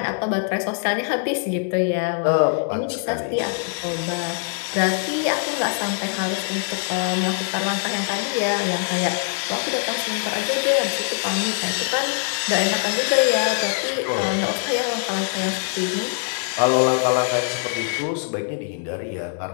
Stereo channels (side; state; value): right; silent; 61 dB below the other